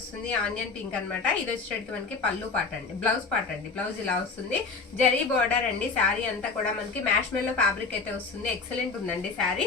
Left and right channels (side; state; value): right; quieter; 4.4 dB